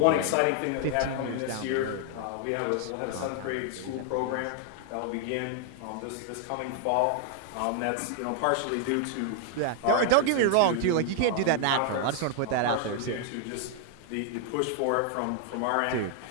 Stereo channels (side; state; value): both; different; correlation 0.00